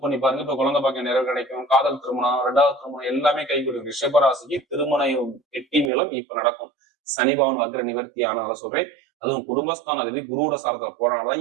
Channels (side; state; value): left; drops out; at 5.9 s